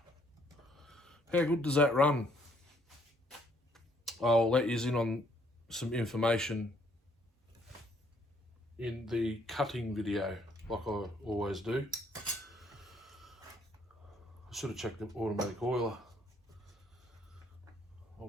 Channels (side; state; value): both; normal; correlation 0.66